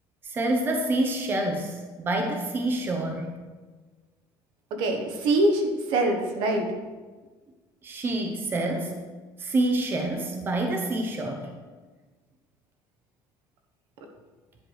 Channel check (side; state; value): both; normal; correlation 0.56